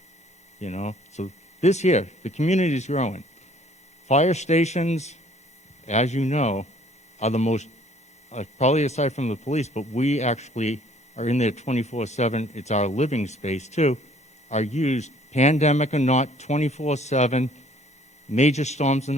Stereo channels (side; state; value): both; normal; correlation 0.58